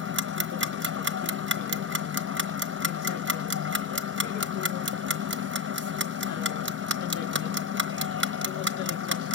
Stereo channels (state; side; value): quieter; right; 4.8 dB